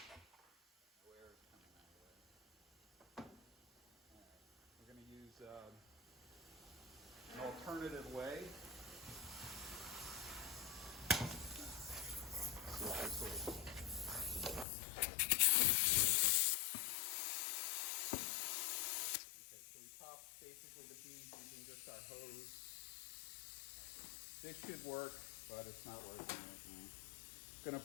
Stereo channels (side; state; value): right; drops out; at 14.7 s